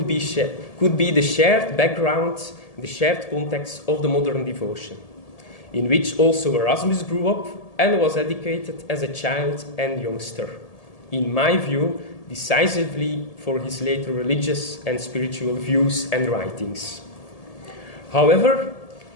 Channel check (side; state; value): right; late; 1.8 ms